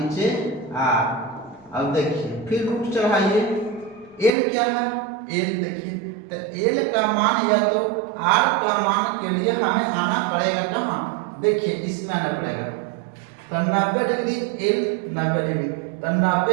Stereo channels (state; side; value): drops out; left; at 4.3 s